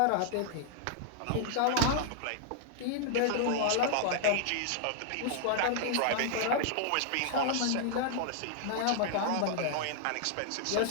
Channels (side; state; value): both; different; correlation -0.01